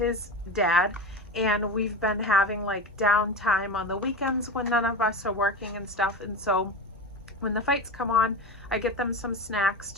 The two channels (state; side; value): normal; both; correlation 0.25